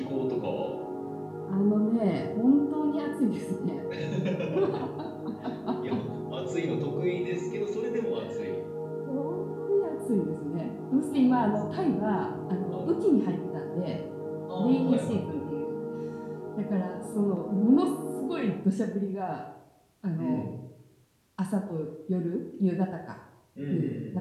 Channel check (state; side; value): identical; both; correlation 1.00